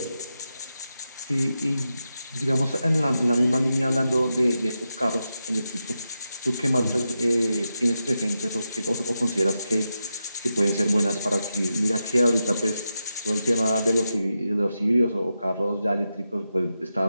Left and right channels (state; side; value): inverted; both; correlation -0.88